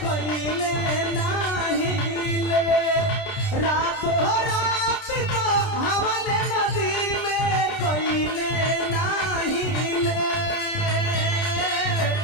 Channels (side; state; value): right; late; 30 ms